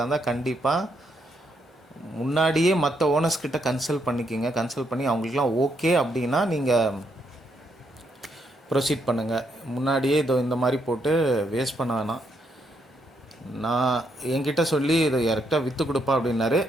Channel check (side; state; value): both; normal; correlation 0.76